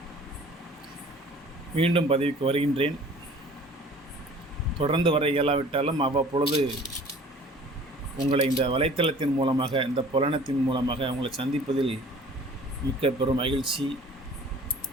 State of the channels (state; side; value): normal; both; correlation 0.48